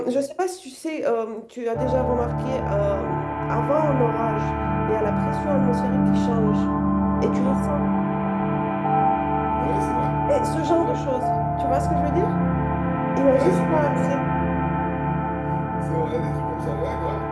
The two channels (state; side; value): identical; both; correlation 1.00